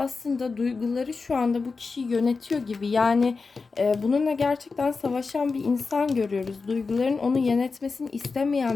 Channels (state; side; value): quieter; right; 4.4 dB